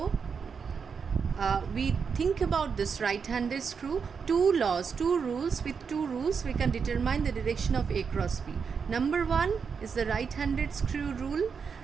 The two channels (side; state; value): left; quieter; 6.1 dB